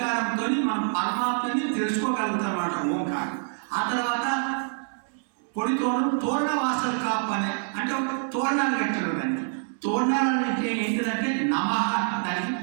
మనం పరమాత్మని తెలుసుకోగలుగుతాం అన్నమాట ఓంకారం. ఆ తర్వాత పొడి తోరణ వాసలు కాపనే అంటే ఒక తోరణాలు కట్టారు. దానికి తోరణాలు అంటే ఏంటిదంటే నమః దానికి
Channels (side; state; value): left; silent; 61 dB below the other